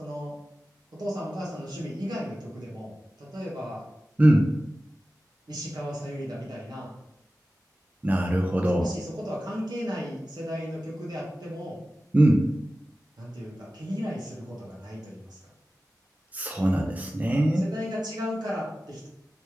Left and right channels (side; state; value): both; normal; correlation 0.95